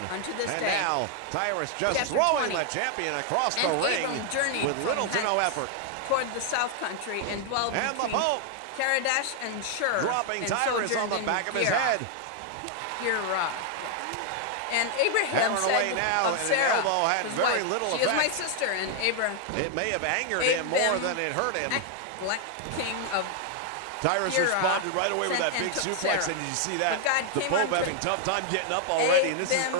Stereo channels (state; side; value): different; both; correlation 0.00